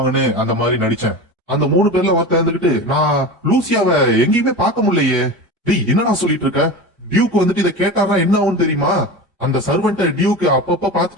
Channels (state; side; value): normal; both; correlation 0.28